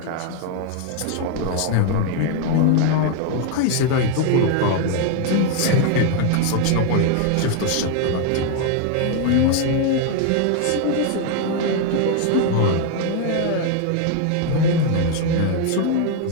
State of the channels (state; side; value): different; both; correlation 0.00